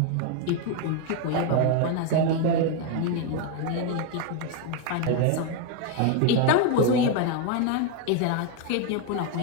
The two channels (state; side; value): different; both; correlation 0.01